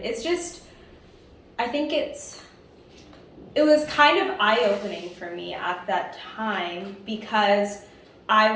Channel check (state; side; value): identical; both; correlation 1.00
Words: it's just, I think it was kind of eye-opening for me at that time because I